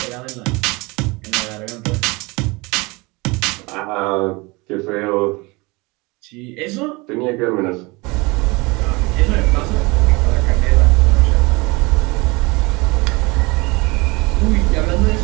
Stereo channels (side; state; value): left; quieter; 25.2 dB